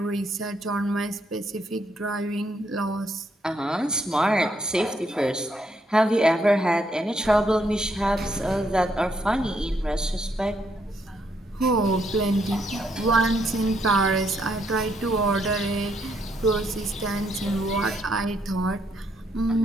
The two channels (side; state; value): both; normal; correlation 0.74